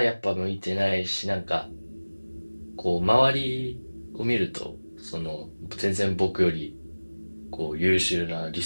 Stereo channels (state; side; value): inverted; both; correlation -1.00